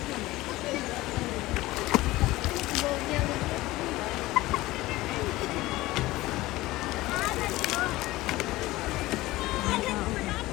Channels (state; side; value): quieter; right; 18.4 dB